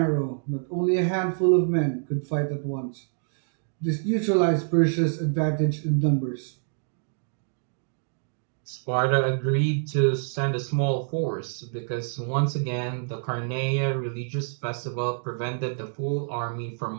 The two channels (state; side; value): silent; left; digital silence